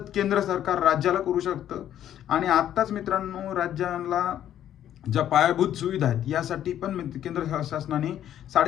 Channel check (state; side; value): quieter; right; 11.0 dB